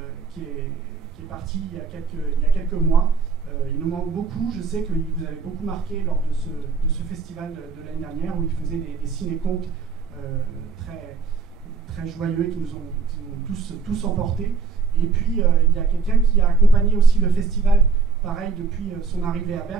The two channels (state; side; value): quieter; left; 4.9 dB